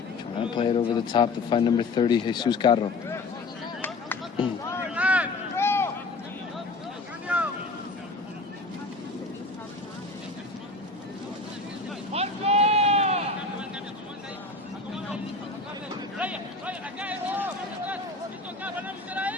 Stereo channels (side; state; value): right; quieter; 3.4 dB